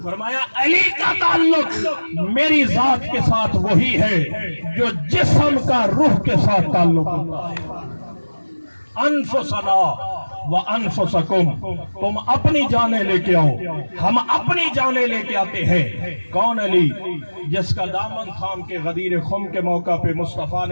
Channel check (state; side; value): inverted; both; correlation -1.00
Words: فرمایا علی کا تعلق میری ذات کے ساتھ وہی ہے جو جسم کا روح کے ساتھ تعلق ہوتا ہے۔ انفسنا وانفسکم، تم اپنی جانیں لے کے آؤ، ہم اپنی جانیں لے کے آتے ہیں۔ کون علی؟ جس کا دامن تھام کے غدیر خم کے موقع پہ مصطفیٰ